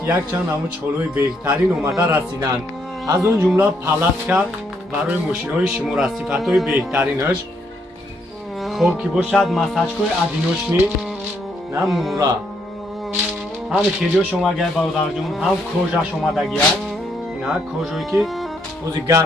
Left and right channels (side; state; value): both; normal; correlation 0.74